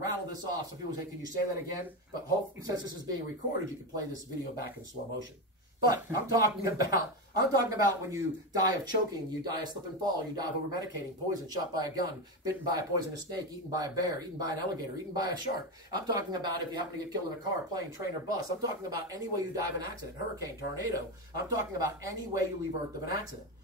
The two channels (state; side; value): normal; both; correlation 0.15